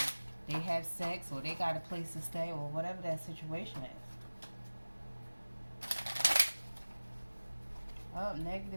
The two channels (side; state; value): both; inverted; correlation -1.00